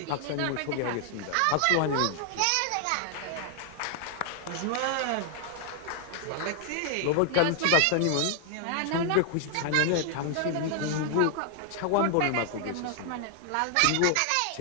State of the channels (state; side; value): different; both; correlation 0.00